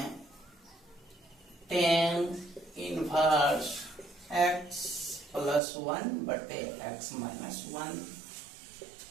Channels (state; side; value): drops out; left; at 5.6 s